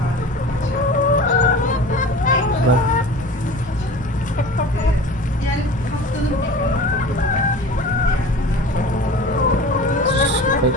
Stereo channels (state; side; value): normal; both; correlation 0.38